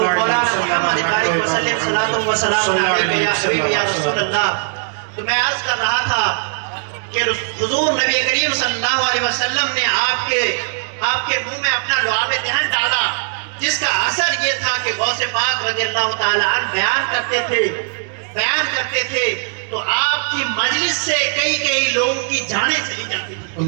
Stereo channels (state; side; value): silent; left; digital silence